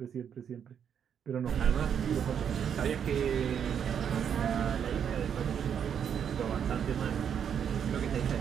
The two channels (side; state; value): left; quieter; 8.2 dB